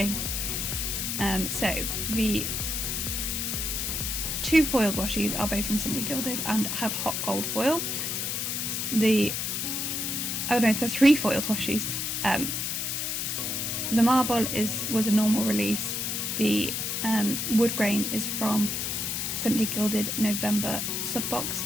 So the 2 foiled washis are both from Simply Gilded and have hot gold foil. The 3 foiled washis. The marble was a normal release. The wood grain is from Simply Gilded November subbox,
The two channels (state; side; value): noise; left; hiss, 1 dB below the sound